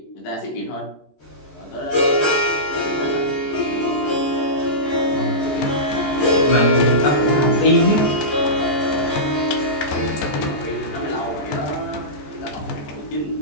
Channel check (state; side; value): late; right; 14 ms